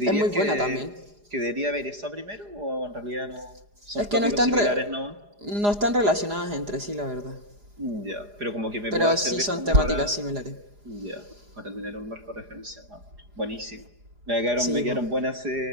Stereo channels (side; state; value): left; late; 4.9 ms